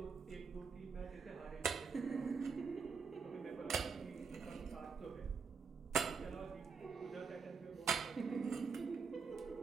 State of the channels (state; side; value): quieter; left; 5.4 dB